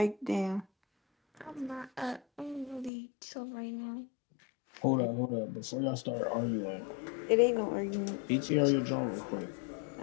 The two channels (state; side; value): drops out; right; at 2.9 s